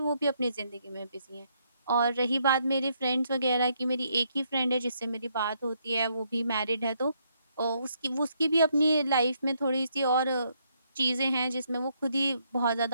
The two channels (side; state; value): both; inverted; correlation -0.73